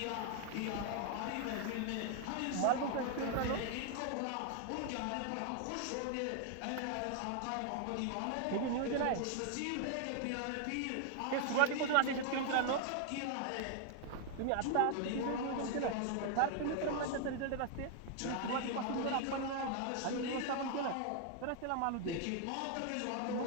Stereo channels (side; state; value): both; different; correlation 0.00